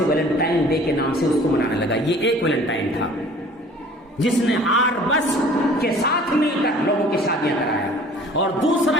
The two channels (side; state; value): both; normal; correlation 0.50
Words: ویلنٹائن ڈے کے نام سے اس کو منانے لگا۔ یہ ایک ویلنٹائن تھا جس نے آر بس کے ساتھ مل کر لوگوں کی شادیاں کرایا، اور